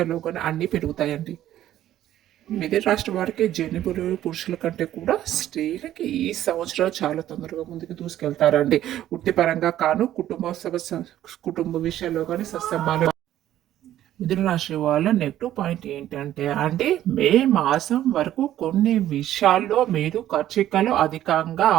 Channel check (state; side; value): quieter; left; 12.6 dB